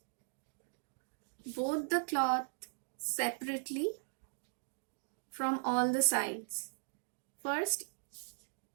both the cloth separately from all the sides. First,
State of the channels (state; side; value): silent; left; digital silence